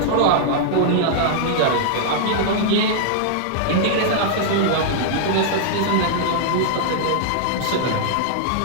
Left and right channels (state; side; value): different; both; correlation -0.01